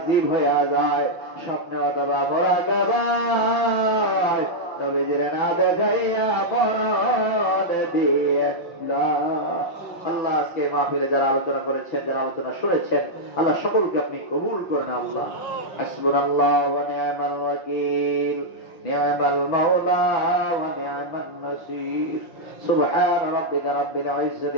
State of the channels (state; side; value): late; right; 6.0 ms